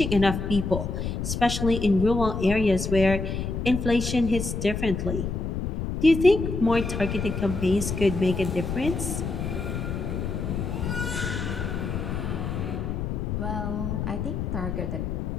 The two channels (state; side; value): noise; left; rumble, 3 dB below the sound